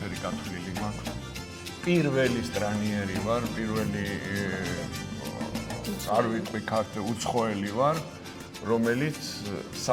გათვლილი მაქვს. პირველი სტრანიერი ვარ, პირველი არ ვიტყვი ქართული უცხოელი ვარ, რომელიც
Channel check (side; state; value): both; identical; correlation 1.00